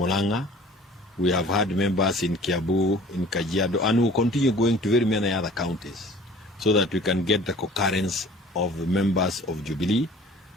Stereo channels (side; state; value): both; normal; correlation 0.48